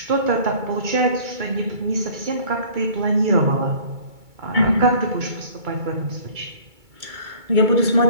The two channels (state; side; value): late; left; 2.3 ms